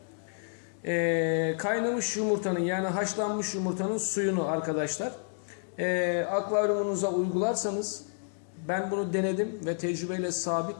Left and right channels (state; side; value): silent; right; digital silence